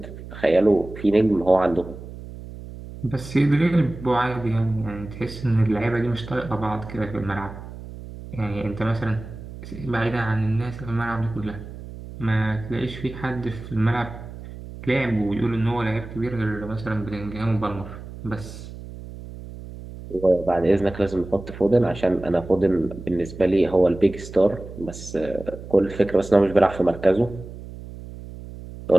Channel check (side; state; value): right; noise; hum, 13 dB below the sound